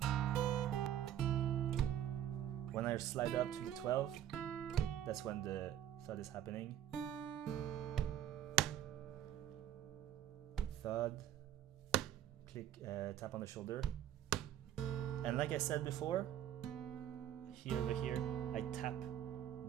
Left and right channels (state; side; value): quieter; left; 11.1 dB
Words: When I slide up to the 12, that's when the thud is happening. Thud, click, tap on the shoulder. And like I said before, here, I tap